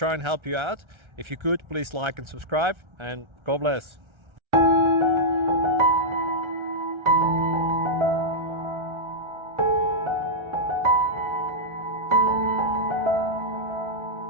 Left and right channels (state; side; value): late; left; 1.3 ms